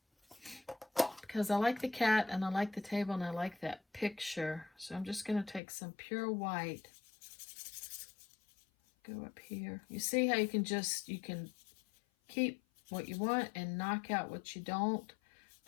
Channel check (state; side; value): drops out; right; at 5.6 s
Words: because I like the cat and I like the table and I like that picture. So I'm just going to take some pure white, go up here. You see how you can keep what you want and knock out what you don't.